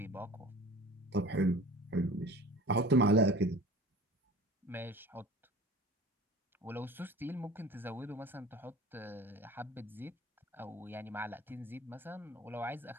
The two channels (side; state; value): both; normal; correlation 0.42